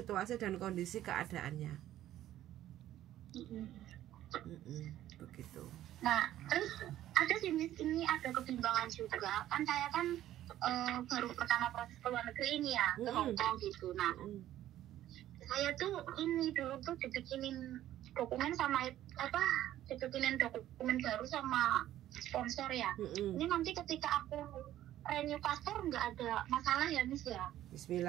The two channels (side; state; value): left; quieter; 13.0 dB